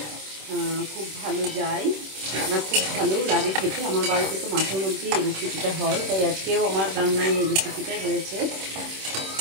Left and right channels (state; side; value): late; left; 26 ms